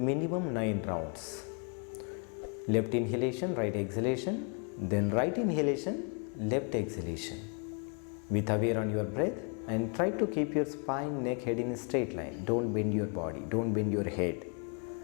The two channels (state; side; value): quieter; right; 38.9 dB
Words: 9 rounds. Left inhalation, right exhalation, then right inhalation, left exhalation. With aware on your breath and try to keep your spine, neck, head in a straight line. Don't bend your body, don't bend your head.